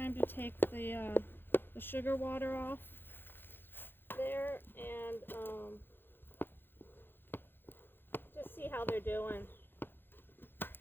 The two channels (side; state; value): right; late; 0.10 ms